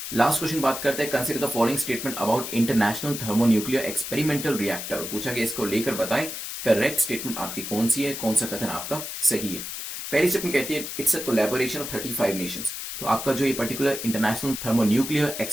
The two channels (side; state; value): left; noise; hiss, 7 dB below the sound